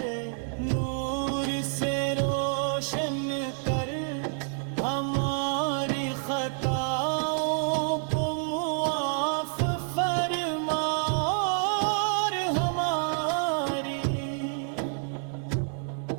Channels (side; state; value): left; silent; 59 dB below the other